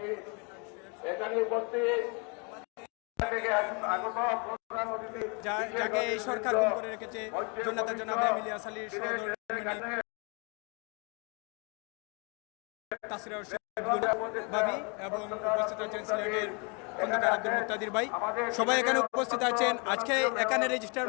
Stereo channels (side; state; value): right; quieter; 33.5 dB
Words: এখানে উপস্থিত যাকে এই সরকার গুম করে রেখেছে জনতা জনাব এমিলিয়া সালির সহধর্মিণী তাসরিয়া ভাবি এবং উপস্থিত আছেন সিলেটের খন্দকার আব্দুল মুক্তাদির ভাই, সবাই এখানে উপস্থিত আছেন। আজকে এখানে